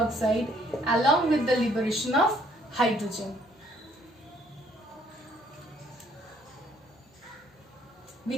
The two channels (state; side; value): normal; both; correlation 0.64